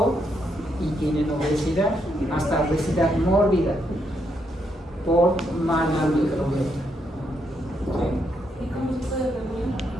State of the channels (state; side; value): normal; both; correlation 0.78